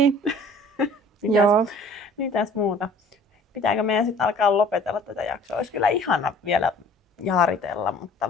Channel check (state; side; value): normal; both; correlation 0.51